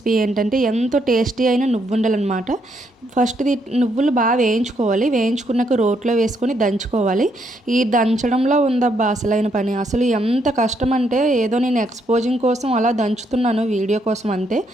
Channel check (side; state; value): both; normal; correlation 0.74